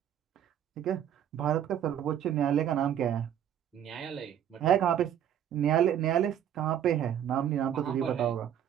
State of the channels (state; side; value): quieter; left; 10.0 dB